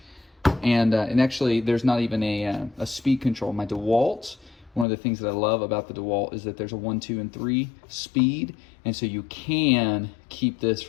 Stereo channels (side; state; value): right; drops out; at 4.9 s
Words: and actually there's not even a speed control. My DeWalt, one of the things that I love about the DeWalt is that there's a 1, 2, and 3 speed, and so you can keep this